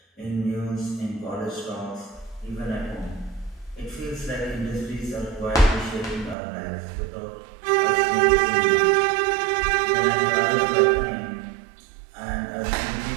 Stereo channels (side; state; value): left; drops out; at 6.4 s